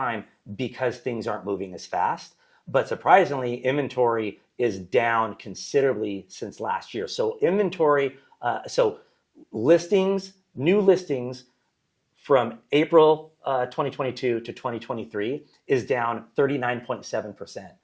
because things aren't moving as fast. But surprisingly, inventory is down considerably since last year. So new listings from April 2022 to 2023 is down 39.7%.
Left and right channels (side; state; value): both; identical; correlation 1.00